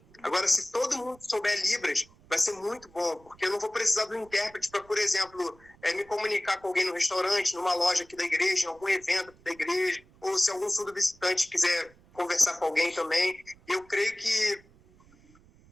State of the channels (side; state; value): right; noise; rumble, 27 dB below the sound